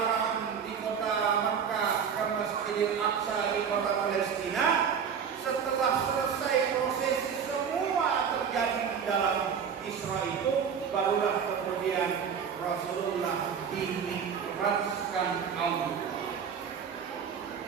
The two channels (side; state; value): left; quieter; 7.2 dB